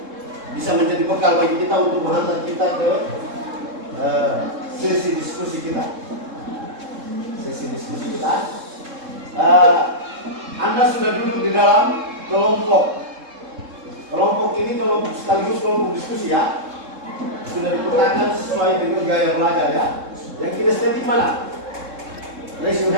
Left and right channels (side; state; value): left; late; 3.7 ms